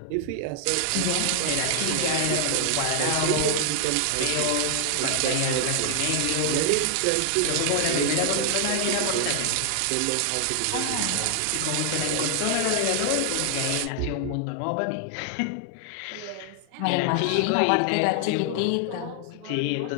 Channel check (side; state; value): both; different; correlation 0.00